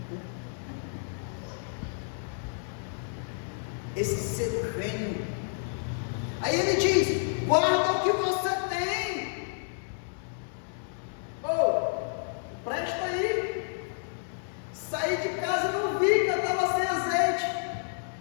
Esse ser vem. Aí ele diz: guarda o que você tem. Presta aí. Saí de casa e não vi que eu estava sem azeite.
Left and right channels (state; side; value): silent; right; 58 dB below the other